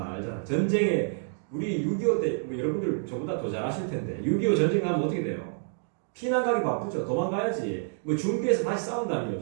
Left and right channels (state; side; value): silent; left; digital silence